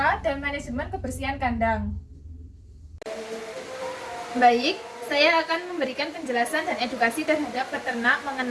dan manajemen kebersihan kandang. Baik, saya akan memberikan penjelasan dan edukasi terhadap peternak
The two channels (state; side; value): identical; both; correlation 1.00